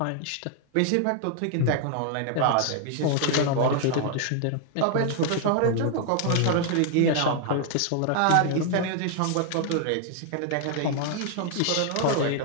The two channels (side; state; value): both; different; correlation 0.00